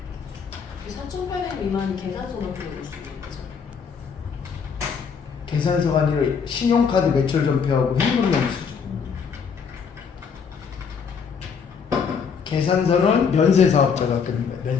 4,800 미만이 계산서만 들어올 수 있는 거죠. 계산서가 아니라 신용카드 매출 전표하고 현금 영수증. 계산서는 면세 사업자가 뜹니다.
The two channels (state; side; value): quieter; right; 6.3 dB